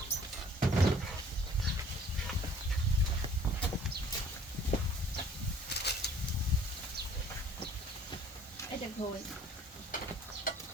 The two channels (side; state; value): both; normal; correlation 0.55